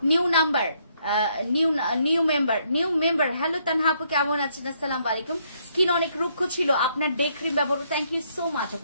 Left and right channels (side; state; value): both; inverted; correlation -0.71